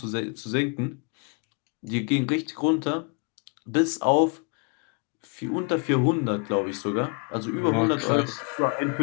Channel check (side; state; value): right; quieter; 35.2 dB